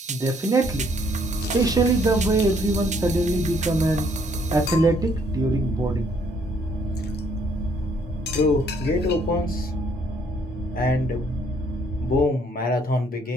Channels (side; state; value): both; normal; correlation 0.66